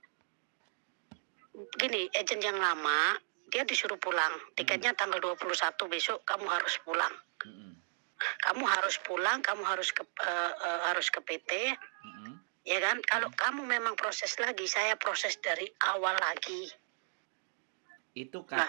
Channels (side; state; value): left; silent; digital silence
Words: Gini, agent yang lama dia disuruh pulang. Tiketnya tanggal 21 besok kamu harus pulang. Mm-mm. Kamu harus pulang, kamu harus ke PT. Ya kan? Kalau kamu memang proses lagi, saya proses dari awal lagi. Itu Nah,